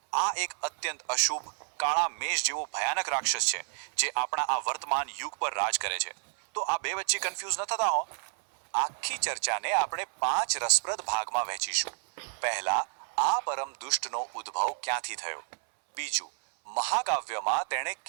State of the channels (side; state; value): left; silent; 58 dB below the other